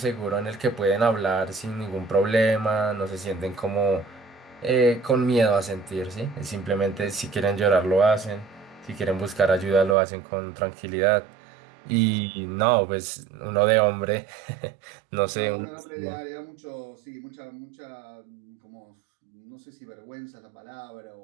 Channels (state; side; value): drops out; left; at 10.0 s